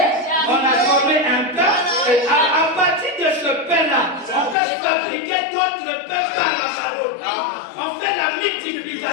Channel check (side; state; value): right; drops out; at 4.5 s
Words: on a formé un pain. Et à partir de ce pain-là, on peut fabriquer d'autres pains par la parole. On fait la